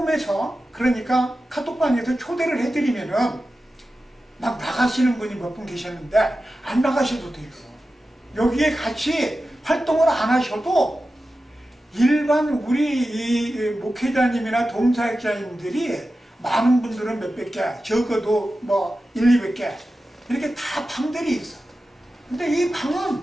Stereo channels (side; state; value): both; normal; correlation 0.93